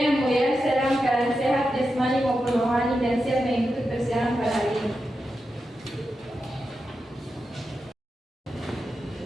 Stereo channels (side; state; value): both; normal; correlation 0.89